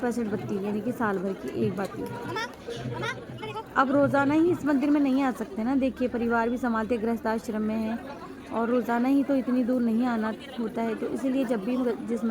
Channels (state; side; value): identical; both; correlation 1.00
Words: बत्ती यानी कि साल भर की एक बत्ती। अब रोज़ाना ही इस मंदिर में नहीं आ सकते ना, देखिए परिवार भी संभालते, गृहस्थ आश्रम में है और रोज़ाना ही तो इतनी दूर नहीं आना होता है, तो इसीलिए जब भी जिस